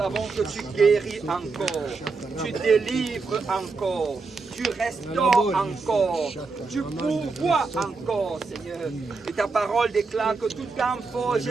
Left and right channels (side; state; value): left; quieter; 4.2 dB